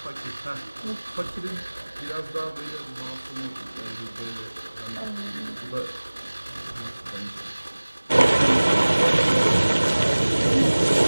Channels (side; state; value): both; inverted; correlation -1.00